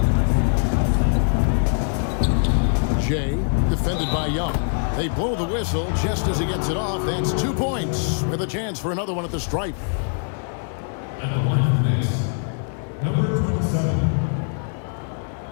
Jay, defended by Young. They blow the whistle just as he gets it off. That's 2 points with a chance for another one at the stripe. At the line for the Knicks, number 27.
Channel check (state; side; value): silent; right; 60 dB below the other